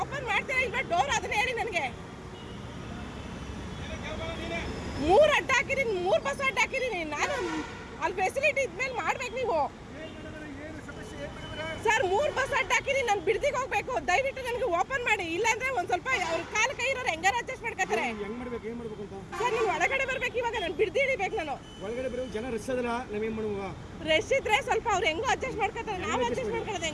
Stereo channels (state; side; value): identical; both; correlation 1.00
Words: ಓಪನ್ ಮಾಡ್ತೀರಾ ಇಲ್ವಾ ಡೋರ್, ಅದನ್ನ ಹೇಳಿ ನನಗೆ. 3 ಅಡ್ಡ ಹಾಕಿದ್ದೀನಿ, 3 ಬಸ್ ಅಡ್ಡ ಹಾಕಿದ್ದೀನಿ ನಾನು. ಅಲ್ಲಿ ಫೆಸಿಲಿಟಿ ಇದ್ಮೇಲೆ ಮಾಡ್ಬೇಕು ನೀವು. ಸರ್ 3 ಬಸ್ ಅಡ್ಡ ಹಾಕಿದ್ದೀನಿ, ನಾನು ಬಿಡದಿಗೆ ಹೋಗ್ಬೇಕು, ದಯವಿಟ್ಟು ನನಗೆ ಓಪನ್ ಮಾಡಿ, ಇಲ್ಲಾಂದ್ರೆ ಒಂದ್ ಸ್ವಲ್ಪ ಅವ್ರ ಕಾಲು ಕೈ ಇರೋರು ಹೆಂಗಾರ ಅಡ್ಜಸ್ಟ್ ಮಾಡ್ಕೊತಾರೆ. ಸರ್ ನೀವು ಒಳಗಡೆ ಬರ್ಬೇಕು, ಇವಾಗ ನಾನು ಬಿಡದಿ ಹಿಡಿಬೇಕು. ನಾನು ಒಳಗಡೆ ಬರೋ ಜನ ರಶ್ ಅದಲ್ಲ, ನಾವೇನ್ ಮಾಡುವ? ರಶ್ ಇದ್ರೆ ಸ್ವಲ್ಪ ಅವ್ರು ಹೆಂಗೋ ಅಡ್ಜಸ್ಟ್ ಮಾಡ್ಕೊತಾರೆ, ನಾವು ಅಡ್ಜಸ್ಟ್ ಮಾಡ್ಕೊಳ್ಳೋದು